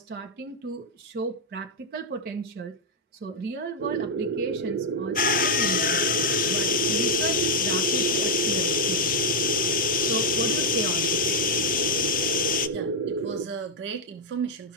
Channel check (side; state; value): both; normal; correlation -0.02